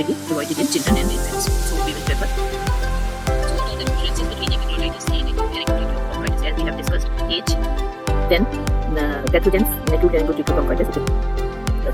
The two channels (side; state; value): both; identical; correlation 1.00